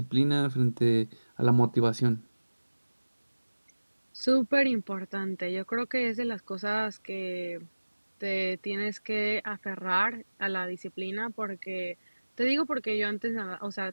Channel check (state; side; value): inverted; both; correlation -1.00